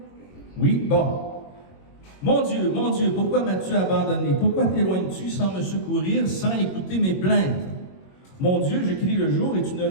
Oui, bon. Mon Dieu, pourquoi m'as-tu abandonné? Pourquoi t'éloignes-tu sans me secourir, sans écouter mes plaintes? Mon Dieu, je crie le jour et tu ne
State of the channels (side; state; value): right; late; 22 ms